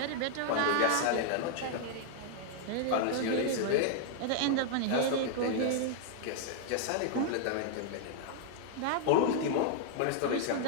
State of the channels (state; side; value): different; both; correlation 0.00